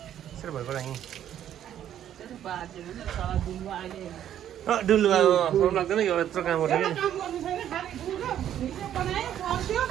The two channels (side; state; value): left; quieter; 10.7 dB